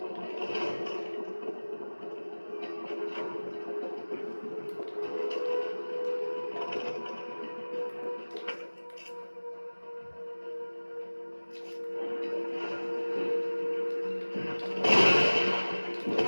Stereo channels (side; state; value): both; inverted; correlation -1.00